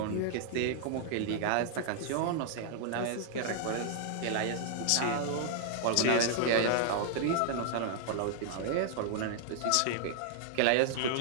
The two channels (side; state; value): both; different; correlation -0.01